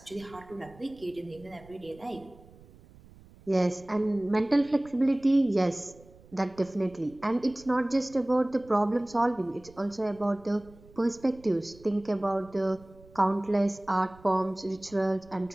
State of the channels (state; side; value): noise; right; rumble, 23 dB below the sound